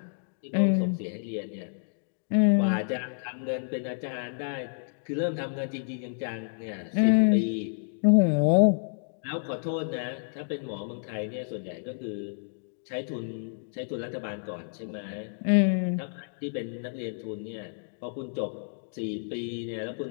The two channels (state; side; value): silent; right; digital silence